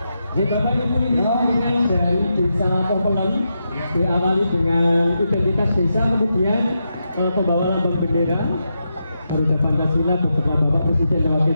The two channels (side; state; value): both; inverted; correlation -0.85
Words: Di Bapak Ibu ini dengan dari desa Popelen diawali dengan identitas desa, kemudian pembawa lambang bendera Garuda Pancasila beserta Bapak Presiden dan Wakil